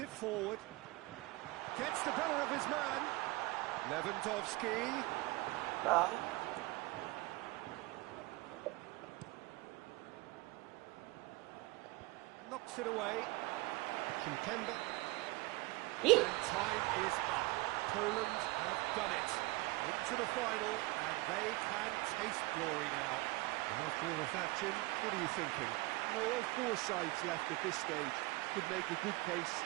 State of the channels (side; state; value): left; quieter; 22.0 dB